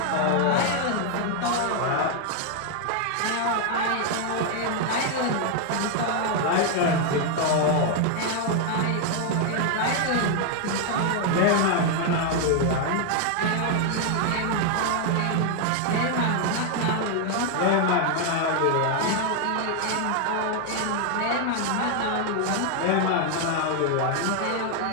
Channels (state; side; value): different; both; correlation 0.00